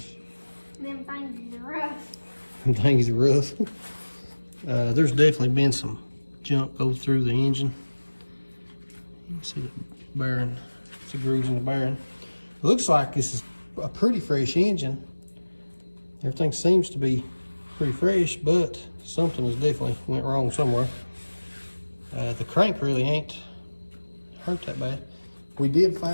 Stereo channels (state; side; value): inverted; both; correlation -1.00